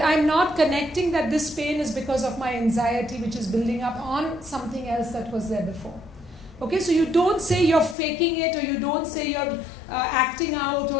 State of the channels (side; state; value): right; drops out; at 8.0 s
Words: I'm not connecting that this pain is because of my anxiety, which is building up on something else that was there before. Okay, so you don't say you're faking it, or you don't say you're acting out